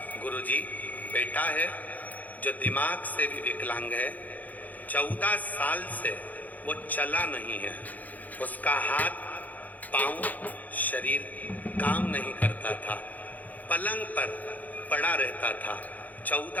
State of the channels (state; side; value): late; right; 0.080 ms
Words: गुरुजी बेटा है जो दिमाग से भी विकलांग है। 14 साल से वो चला नहीं है। उसका हाथ, पांव, शरीर काम नहीं करता था, पलंग पर पड़ा रहता था।